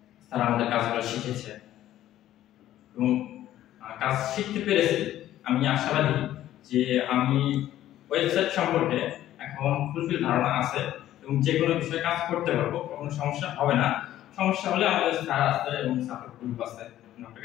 তারা আমাদের কাজগুলো শিখেছে এবং কাজ শিখতে পেরেছি। আমি আশাবাদী যে আমি ওয়েবসাইট সম্পর্কে এখন ফুলফিল ধারণা আছে এবং যে কোনো বিষয়ে কাজ করতে পারবো, কোনো সমস্যা হবে না। সমস্যা হলে আমাদের স্যার আছে এবং সাপোর্ট গ্রুপ আছে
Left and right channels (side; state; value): right; quieter; 13.0 dB